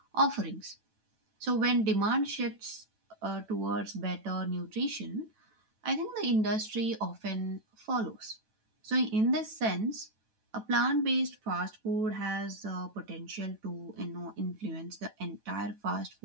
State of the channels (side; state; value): left; late; 9.1 ms